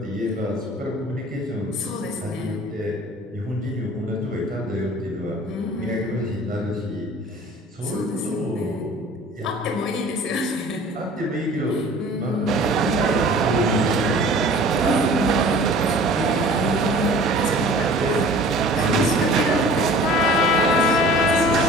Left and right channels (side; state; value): both; normal; correlation 0.46